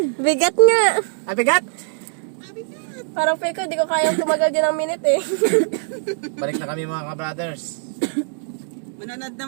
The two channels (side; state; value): left; silent; digital silence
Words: Bigat nga. Ay, bigat! Parang feel ko, di ko kayang tumagal din ng minute eh. Balik na kami mga ka-brothers. Manonood